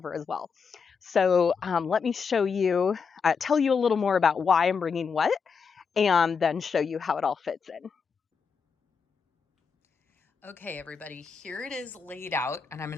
as well. So let me show you, tell you a little more about why I'm bringing what, and then show you how it all fits in. Okay, everybody, here it is laid out, and I'm going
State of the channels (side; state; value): right; quieter; 5.8 dB